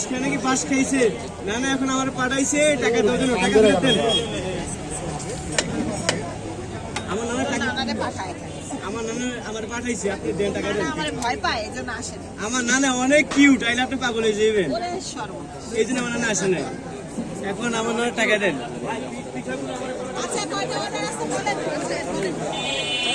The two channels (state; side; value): identical; both; correlation 1.00